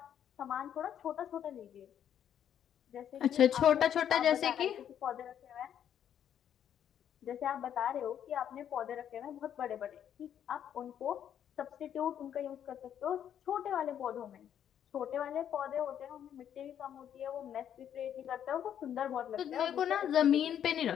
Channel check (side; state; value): right; quieter; 9.6 dB